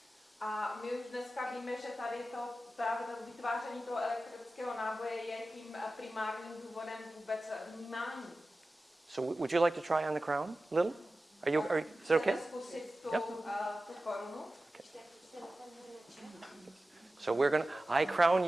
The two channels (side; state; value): both; normal; correlation 0.95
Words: A my už dneska víme, že tady právě to vytváření toho elektrického náboje je tím primárním důvodem vůbec vnímání. So would you like to try on the crown a little? Is it okay? Chceme zkusit tu, Yep. tu korunu. So I crown